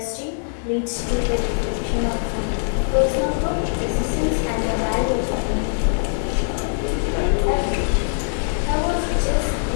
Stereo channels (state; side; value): silent; right; digital silence